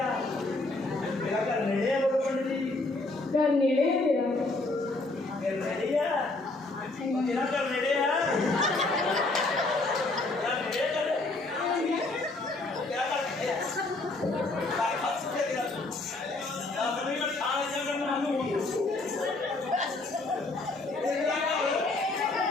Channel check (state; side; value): quieter; right; 3.1 dB